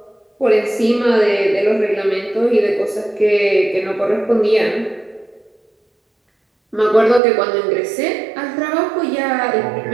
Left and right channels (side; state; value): left; drops out; at 7.2 s